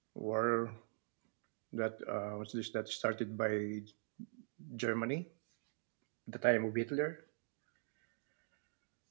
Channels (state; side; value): silent; left; digital silence